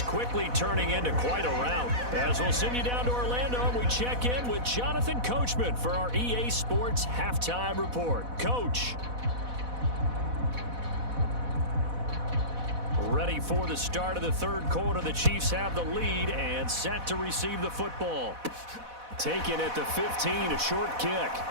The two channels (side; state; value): left; late; 4.1 ms